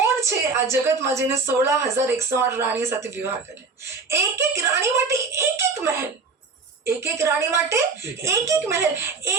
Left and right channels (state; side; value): quieter; left; 4.4 dB